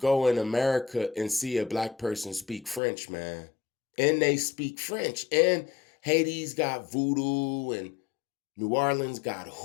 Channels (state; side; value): drops out; right; at 2.8 s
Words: in America and see a black person speak French, man? And they speak French. And Haiti's got voodoo and New Orleans got